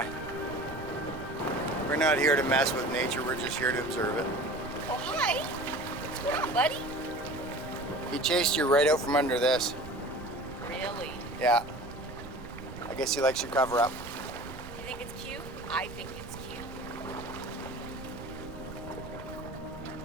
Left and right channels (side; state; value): right; noise; rumble, 13 dB below the sound